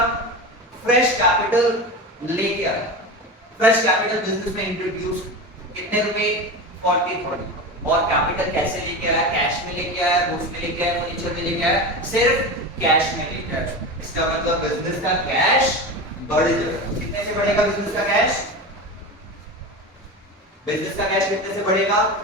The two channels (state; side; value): normal; both; correlation 0.25